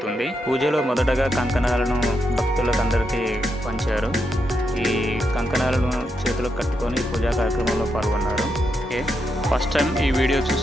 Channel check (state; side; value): normal; both; correlation 0.82